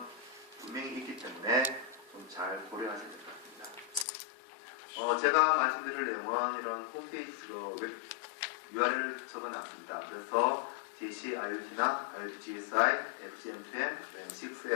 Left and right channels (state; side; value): drops out; right; at 4.0 s